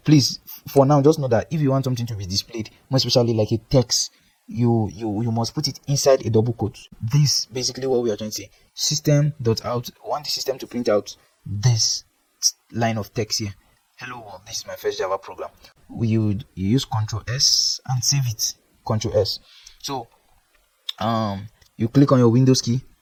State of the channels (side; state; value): both; identical; correlation 1.00